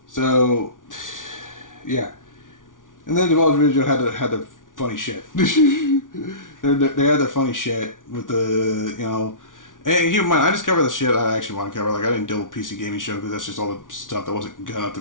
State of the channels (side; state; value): right; late; 0.88 ms